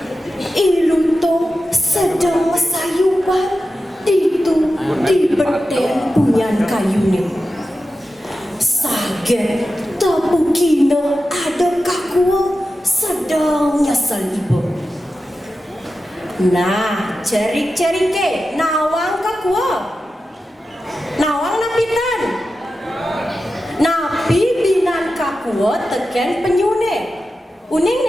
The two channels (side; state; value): both; normal; correlation 0.92